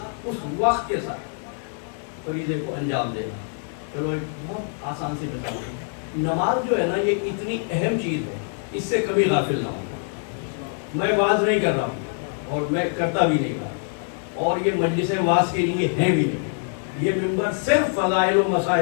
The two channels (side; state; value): right; silent; 57 dB below the other